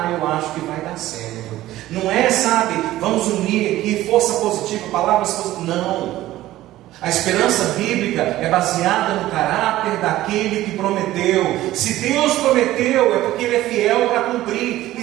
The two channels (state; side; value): quieter; left; 15.3 dB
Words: acho que vai dar certo. Não é, sabe, vamos unir aqui força positiva, palavras positivas. Não. A esperança bíblica é baseada no caráter daquele que prometeu. Se Deus prometeu, é porque Ele é fiel para cumprir. E